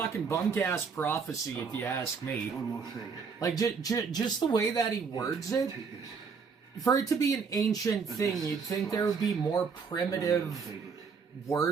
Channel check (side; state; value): left; quieter; 5.6 dB